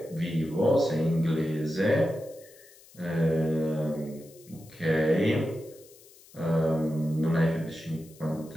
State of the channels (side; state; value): left; noise; hiss, 24 dB below the sound